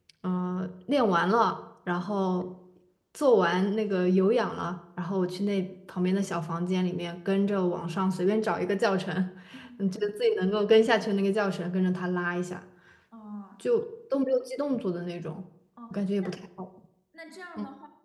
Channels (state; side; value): identical; both; correlation 1.00